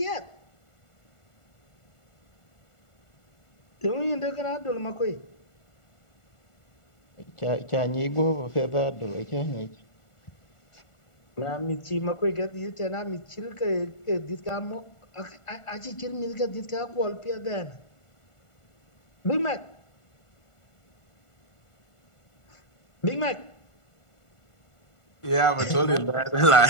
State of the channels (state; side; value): late; right; 1.4 ms